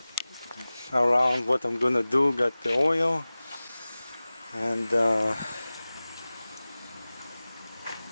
around what I'm gonna do. Got the oil, and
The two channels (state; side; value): inverted; both; correlation -0.98